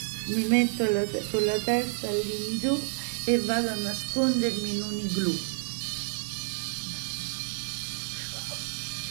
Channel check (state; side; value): silent; left; 58 dB below the other